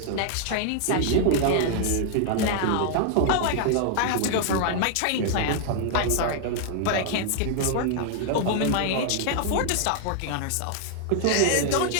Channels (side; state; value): both; different; correlation 0.00